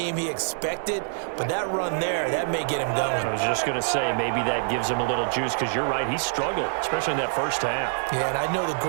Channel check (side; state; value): left; silent; 61 dB below the other